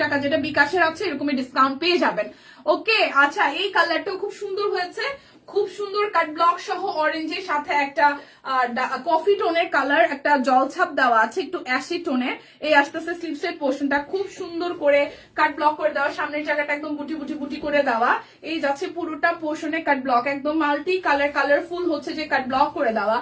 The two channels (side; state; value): both; identical; correlation 1.00